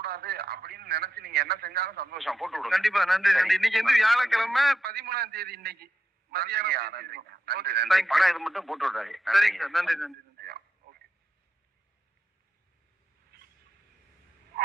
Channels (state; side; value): normal; both; correlation 0.86